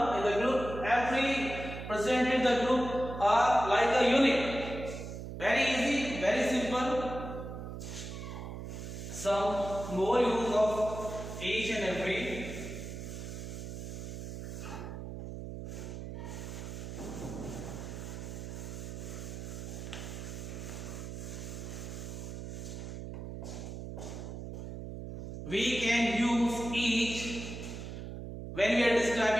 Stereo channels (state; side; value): noise; right; hum, 8 dB below the sound